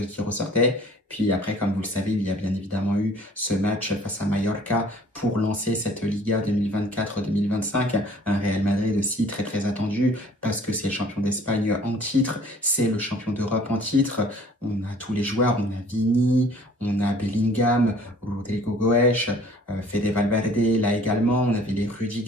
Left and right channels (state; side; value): normal; both; correlation 0.53